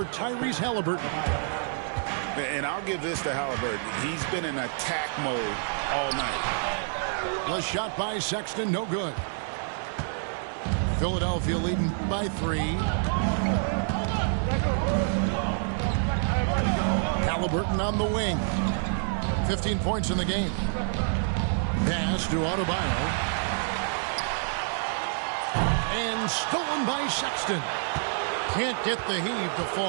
Tyrese Halliburton. And I'll give this to Halliburton. He's been in attack mode all night. The shot by Sexton, no good. Philadelphia leading by 3. Halliburton on the wing. 15 points in the game. Pass to Adebayo. And stolen by Sexton. Can't get the heave to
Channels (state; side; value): silent; left; 56 dB below the other